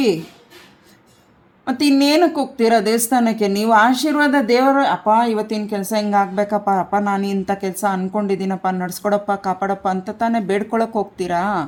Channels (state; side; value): identical; both; correlation 1.00